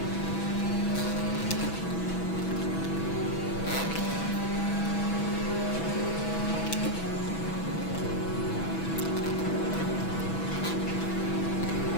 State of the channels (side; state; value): right; late; 6.1 ms